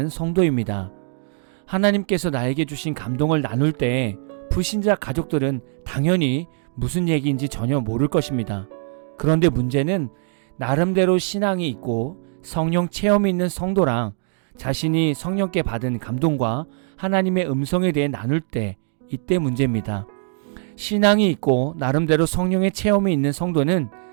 성도입니다. 하나님께서 나에게 주신 감동을 나눌 때 불신자 가족들은 당연히 무슨 얘기인지 전혀 모를 것입니다. 그런데 문제는 나름대로 신앙이 있고 성령 체험이 있는 성도랑 자신이 성령께 받은 감동과 하나님의 음성에 대해 나눌 때 이때 문제입니다. 신앙이 있고 나름대로 성령의 체험이 있는 성도는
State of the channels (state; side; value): silent; left; 61 dB below the other